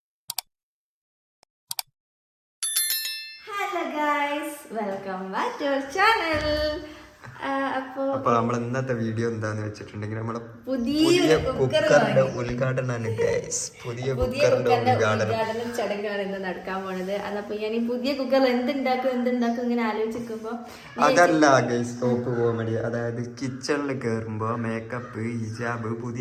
Welcome back to our channel. അപ്പൊ നമ്മൾ ഇന്നത്തെ വീഡിയോ എന്താന്ന് വെച്ചിട്ടുണ്ടെങ്കിൽ നമ്മളെ പുതിയ കുക്കറിന്റെ ഉദ്ഘാടനമാണ്. പുതിയ കുക്കറിന്റെ ഉദ്ഘാടനം ചടങ്ങാണ് ഇന്ന് നടക്കാൻ പോണത്. അതപ്പോ ഞാൻ ഈ പുതിയ കുക്കറിൽ എന്തുണ്ടാക്കും ഇങ്ങനെ ആലോചിക്കുമ്പോ അതല്ല ഗൈസ് ടോപ്പ് കോമഡി. അതായത് കിച്ചണിൽ കയറുമ്പോ മേക്കപ്പ്, ഹിജാബ്,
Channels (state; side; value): identical; both; correlation 1.00